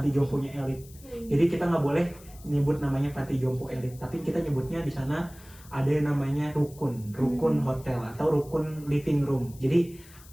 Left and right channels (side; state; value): left; noise; hiss, 22 dB below the sound